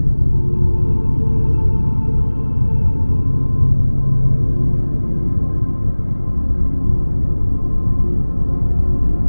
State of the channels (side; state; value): both; inverted; correlation -1.00